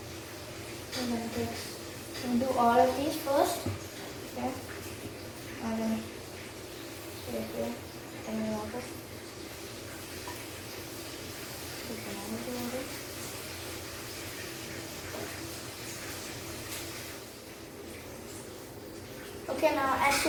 We'll do all of these first. Okay. And then here and water. Okay, now as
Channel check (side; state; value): both; identical; correlation 1.00